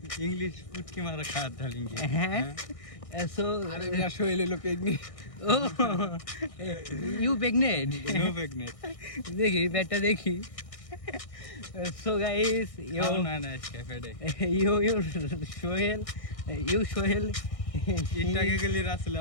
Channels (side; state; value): right; late; 1.6 ms